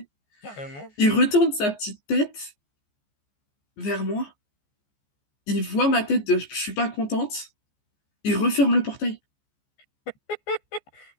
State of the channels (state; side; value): late; right; 14 ms